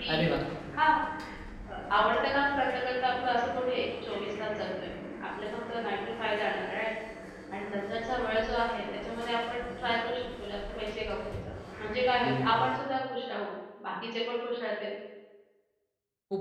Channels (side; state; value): both; identical; correlation 1.00